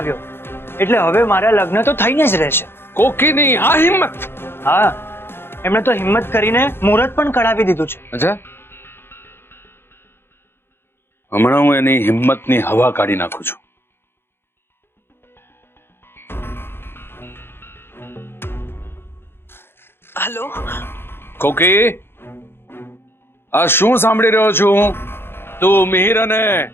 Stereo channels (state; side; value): late; right; 0.11 ms